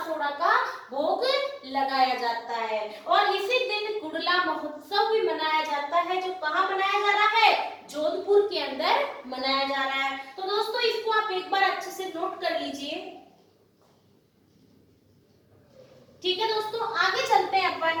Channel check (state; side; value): identical; both; correlation 1.00